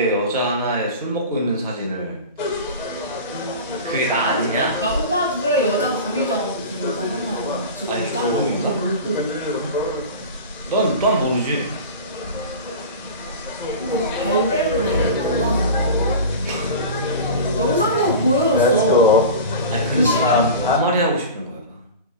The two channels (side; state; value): both; inverted; correlation -0.32